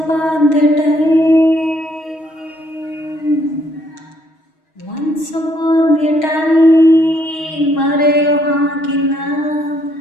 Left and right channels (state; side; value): late; right; 6.3 ms